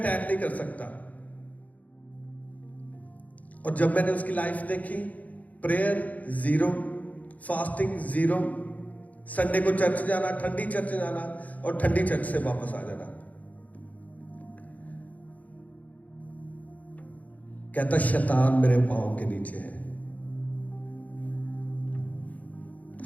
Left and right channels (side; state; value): right; late; 0.074 ms